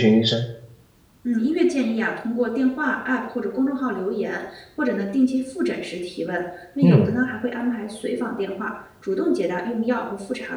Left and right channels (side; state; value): both; identical; correlation 1.00